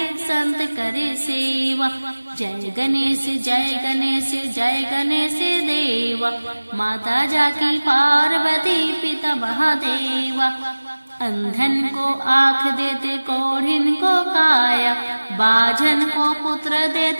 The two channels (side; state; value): both; inverted; correlation -1.00